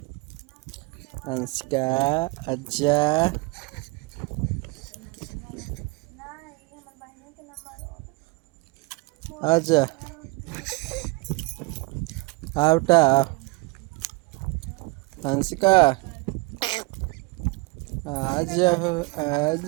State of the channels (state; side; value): quieter; left; 25.1 dB